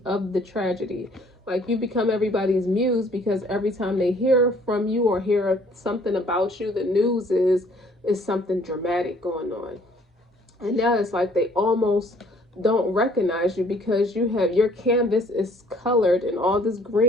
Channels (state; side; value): normal; both; correlation 0.58